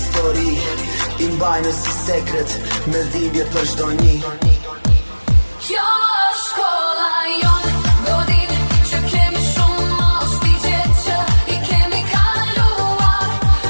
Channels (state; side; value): inverted; both; correlation -1.00